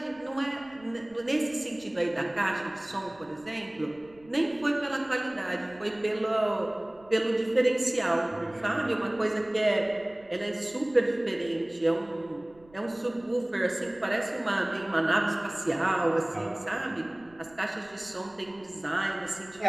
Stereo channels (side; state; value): right; noise; rumble, 27 dB below the sound